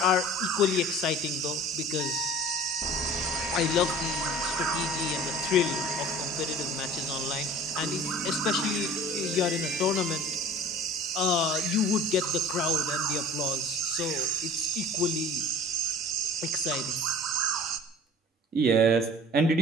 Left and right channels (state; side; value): normal; both; correlation 0.45